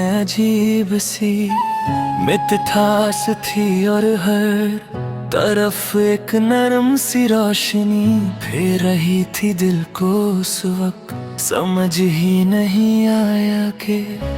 अजीब सी मिठास थी और हर तरफ एक नरम सी रोशनी फेर रही थी दिल को उस वक्त। समझ ही नहीं आया कि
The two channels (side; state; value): both; identical; correlation 1.00